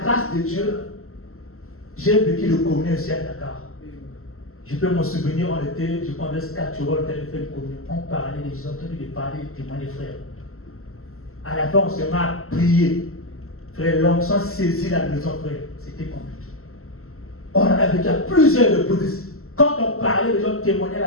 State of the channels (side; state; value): right; late; 0.63 ms